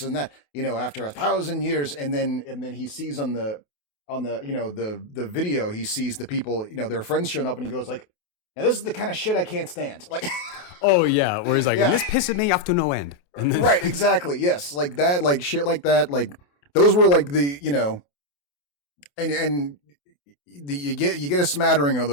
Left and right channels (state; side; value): late; right; 28 ms